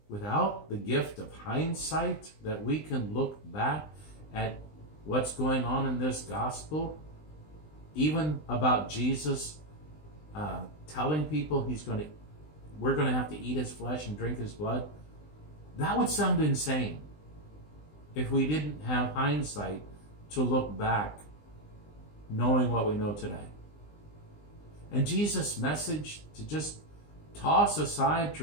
without the gift of hindsight, that we can look back at what's going on in this gospel, even about Jesus telling people we're going to have to eat his flesh and drink his blood, that would sound insane if we didn't have hindsight to look back, knowing what we know today. And Jesus' message to just toss aside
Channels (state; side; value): late; right; 20 ms